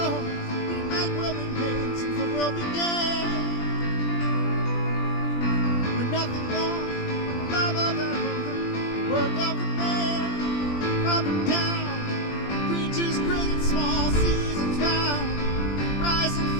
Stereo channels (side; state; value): right; late; 20 ms